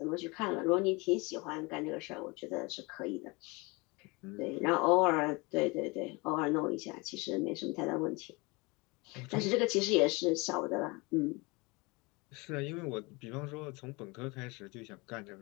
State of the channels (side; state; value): right; quieter; 26.5 dB